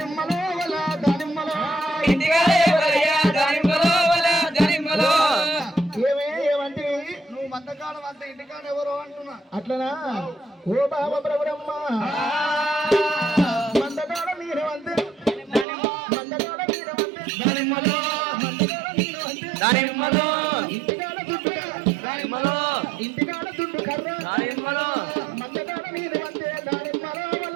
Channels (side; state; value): left; drops out; at 15.7 s